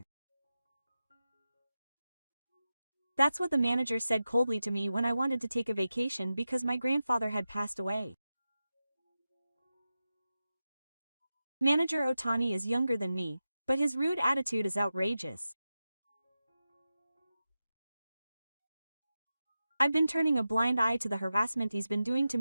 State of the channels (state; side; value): inverted; both; correlation -0.92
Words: That's what the manager said coldly to me when I wanted to take a vacation because my grandfather had passed away. Manager Otani is younger than me, but his rude attitude is outrageous. I've been turning a blind eye to the harassment he's been doing to